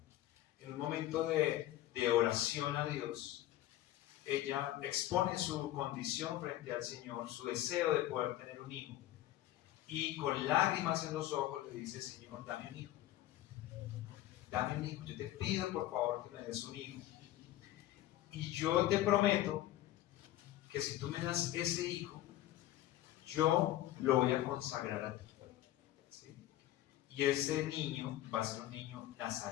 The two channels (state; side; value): quieter; right; 14.3 dB